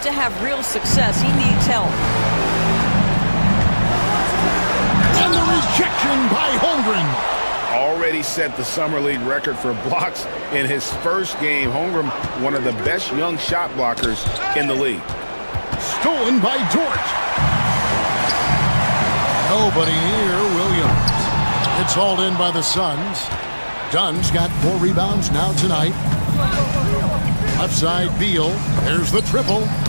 to have real success, he needs help. And the rejection by Holmgren. Already set the Summer League record for blocks in his first game. Holmgren, one of the best young shot blockers in the league. Stolen by Dort. Nobody near Williams. It's hauled in by the Suns. Dunn's got 4 rebounds now tonight. Left side, Beal. There's the triple.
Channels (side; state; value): both; inverted; correlation -1.00